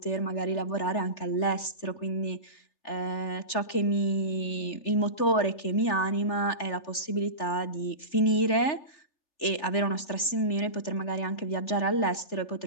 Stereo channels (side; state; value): right; late; 3.4 ms